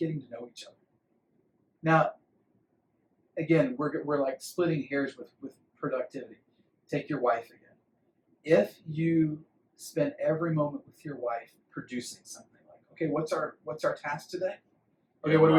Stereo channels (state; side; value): identical; both; correlation 1.00